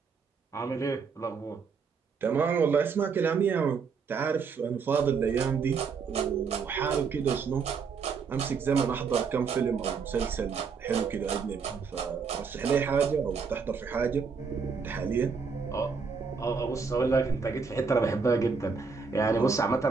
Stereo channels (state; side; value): quieter; left; 5.5 dB